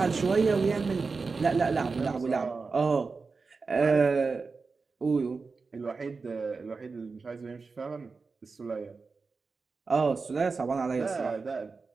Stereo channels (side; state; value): left; quieter; 4.4 dB